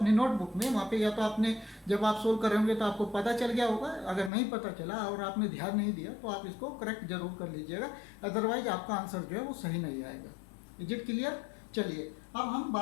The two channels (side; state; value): right; drops out; at 4.3 s